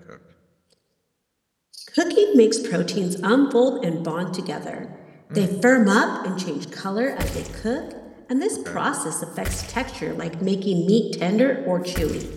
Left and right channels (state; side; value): identical; both; correlation 1.00